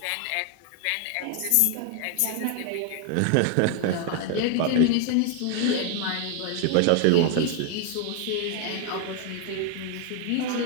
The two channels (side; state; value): both; different; correlation 0.00